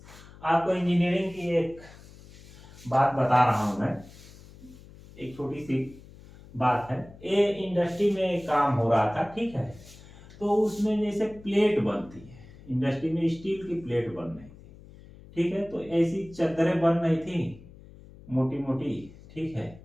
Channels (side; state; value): left; noise; hum, 20 dB below the sound